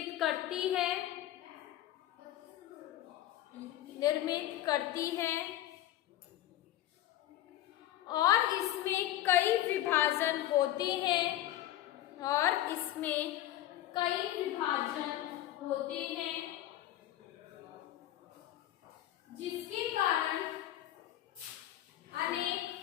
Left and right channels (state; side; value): quieter; right; 13.6 dB